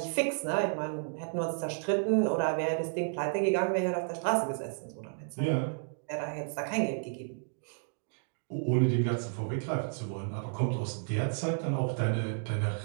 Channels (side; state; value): left; silent; digital silence